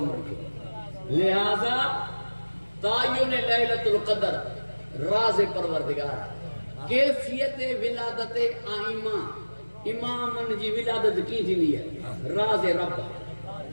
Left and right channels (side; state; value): both; inverted; correlation -1.00